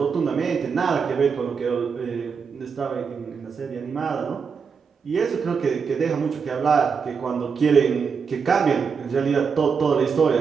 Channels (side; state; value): left; quieter; 5.9 dB